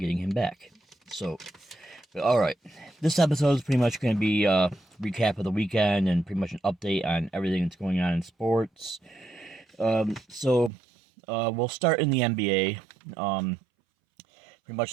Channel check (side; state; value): left; drops out; at 10.7 s